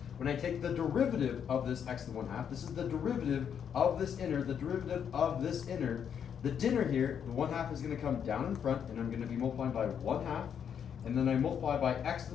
When I take the derivative of this x to the 1/2, this is the derivative of this inner, the derivative of this inner. The dinner here, the 1/2 is going to come down in front, and I'm going to be multiplying by 1/2, and then I multiply by x to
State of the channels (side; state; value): right; quieter; 8.1 dB